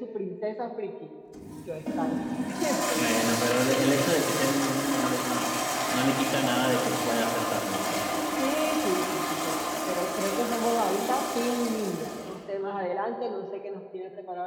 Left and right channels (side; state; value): both; identical; correlation 1.00